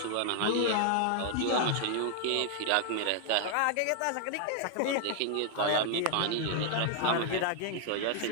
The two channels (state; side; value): different; both; correlation 0.00